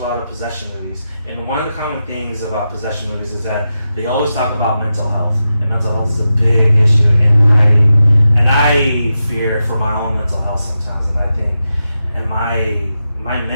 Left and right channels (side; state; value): both; inverted; correlation -0.89